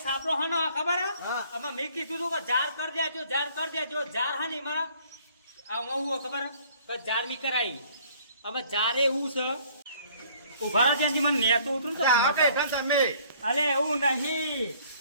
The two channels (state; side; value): inverted; both; correlation -0.58